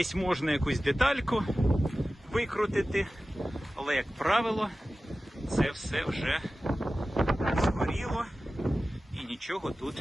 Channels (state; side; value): normal; both; correlation 0.95